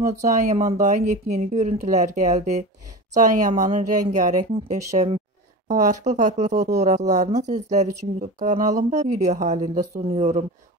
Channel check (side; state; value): both; normal; correlation 0.29